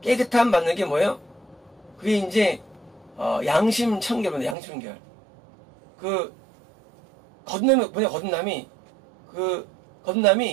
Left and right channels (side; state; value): left; drops out; at 4.5 s